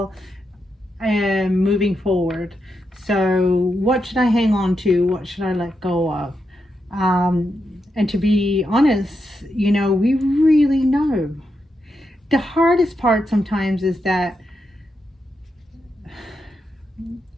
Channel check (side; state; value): both; normal; correlation 0.85